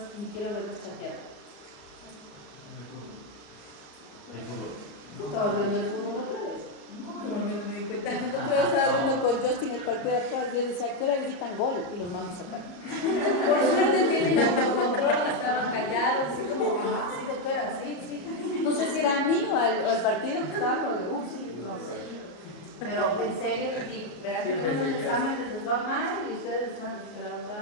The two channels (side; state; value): right; late; 34 ms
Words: ni quiero verlos chatear. estamos viendo el fútbol otra vez. No me di cuenta. Yo estaba viendo con Justin el partido de atrás. Yo decía, ¿a qué hora gritan gol? Y los mandos acá. Por suerte tienen autocontrol, estaban callados, así como, sí, doctora, sí, sí. No sé si era a mí o al partido que estaba, sí, no sé. Pero en serio les digo, verán que los exámenes les va mal y ustedes les van a decir, la